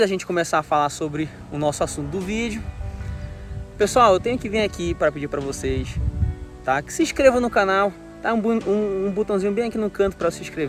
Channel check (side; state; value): both; identical; correlation 1.00